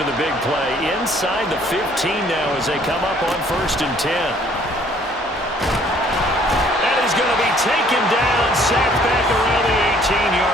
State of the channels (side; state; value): both; normal; correlation 0.60